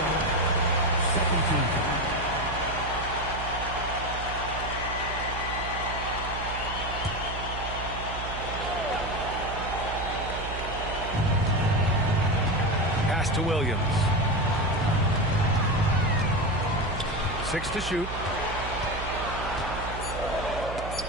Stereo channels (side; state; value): right; noise; hum, 8 dB below the sound